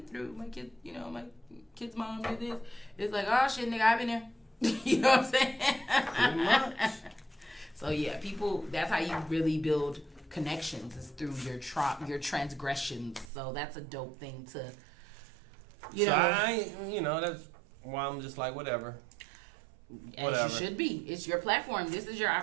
through. My kid, my kid's mom did this. It's like, oh shit, nigga, I've been there. You know what I'm saying? Pretty much. So yeah, people, that's how you really build connections is through your transgressions. So that's a dope thing to, that's why I'm just like, whatever. As you should be. It's your platform. This is your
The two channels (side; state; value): left; drops out; at 13.2 s